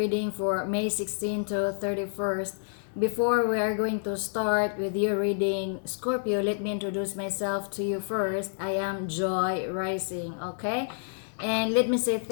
for May 16 to 31st. Before we are going to start with your reading, Scorpio, let me introduce myself to you first. I am Joy Rising, okay? And let me say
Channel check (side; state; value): right; silent; digital silence